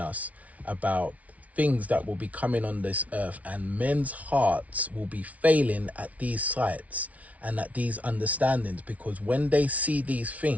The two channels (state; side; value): late; left; 0.068 ms